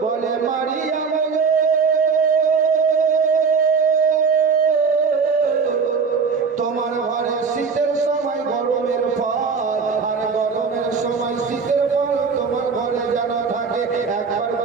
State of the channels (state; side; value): quieter; left; 5.4 dB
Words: বলে মারিয়াম তোমার ঘরে শীতের সময় গরমের ফল আর গরমের সময় শীতের ফল তোমার ঘরে যেন থাকে, একবার